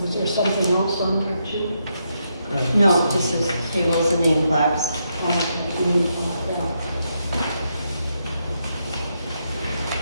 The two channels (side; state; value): both; inverted; correlation -0.81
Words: Was there something else on there too? No, just as tables and name plaques.